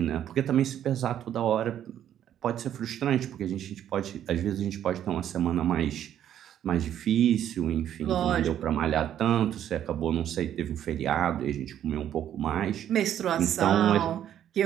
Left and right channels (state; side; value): quieter; left; 10.6 dB